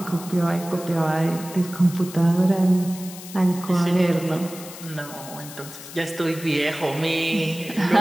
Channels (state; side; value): noise; left; hiss, 14 dB below the sound